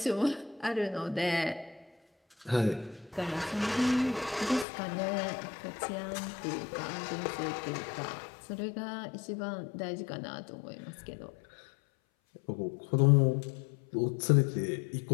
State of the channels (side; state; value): right; drops out; at 4.7 s